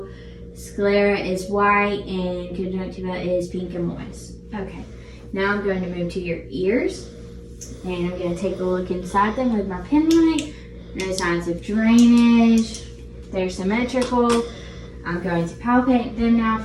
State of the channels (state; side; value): identical; both; correlation 1.00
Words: Sclera is white and conjunctiva is pink and moist. Okay, now I'm going to move to your ears. And I'm going to take a look inside them with my pen light. No signs of drainage. They're symmetrical. I'm going to palpate them now